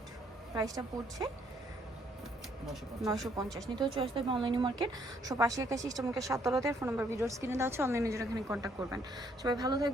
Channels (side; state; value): both; normal; correlation 0.68